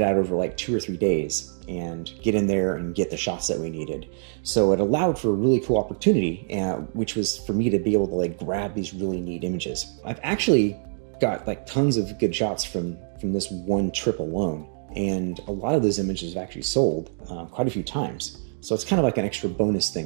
it out over like 2 or 3 days and get in there and get the shots that we needed. So it allowed for a really cool opportunity, which was for me to be able to like grab these really neat images. I've actually got like tons of good shots from this one trip alone, and a lot of those images have actually sold quite a few times. So it's kind of like an extra bonus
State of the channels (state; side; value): silent; left; digital silence